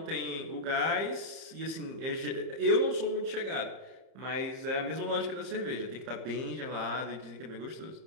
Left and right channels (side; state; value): left; late; 31 ms